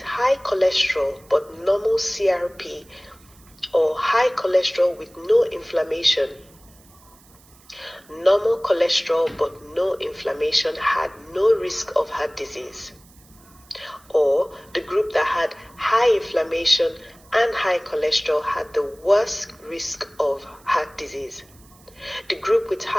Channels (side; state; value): right; noise; hiss, 27 dB below the sound